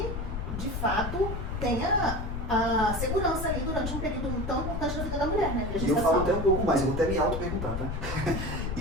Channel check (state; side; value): noise; left; rumble, 4 dB below the sound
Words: de fato, tenha a segurança ali durante um período tão importante da vida da mulher, né? E eu falo até um pouco mais, eu vou até me auto-perguntar, tá?